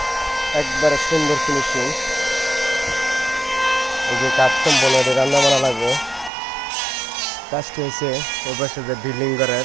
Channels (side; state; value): left; drops out; at 6.3 s